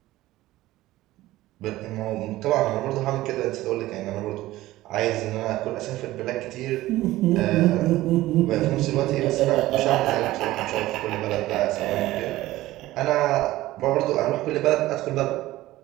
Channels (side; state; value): left; quieter; 16.6 dB